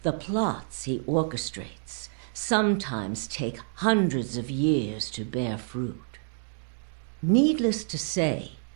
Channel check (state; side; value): silent; left; digital silence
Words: The plots he orchestrates sometimes take hundreds of years to bear fruit. Needless to say,